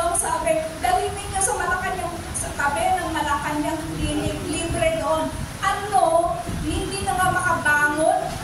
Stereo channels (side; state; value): both; identical; correlation 1.00